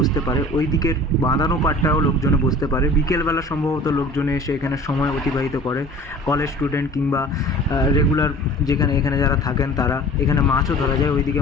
পারে, ওই দিকের বাঁধানো পার্টটাও লোকজনে বসতে পারে। বিকেলবেলা সম্ভবত লোকজনে এসে এখানে সময় অতিবাহিত করে, কলেজ স্টুডেন্ট কিংবা রেগুলার এখানে যারা থাকেন তারা। এখানে মাছও ধরা যায়,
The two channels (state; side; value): normal; both; correlation 0.44